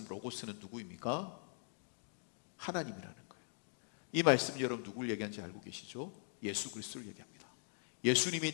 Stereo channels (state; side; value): silent; right; digital silence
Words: 로고스는 누구입니까? 하나님이라는 거예요. 이 말씀 여러분 누구를 얘기하는지 알고 계시죠? 예수 그리스도를 얘기합니다.